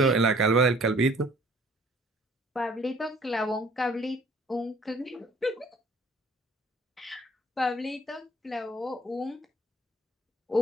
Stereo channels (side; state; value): both; normal; correlation 0.56